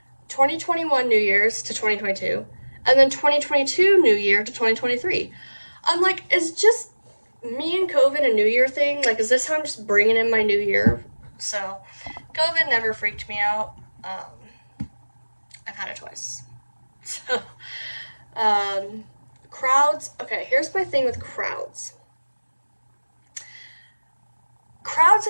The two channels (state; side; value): inverted; both; correlation -1.00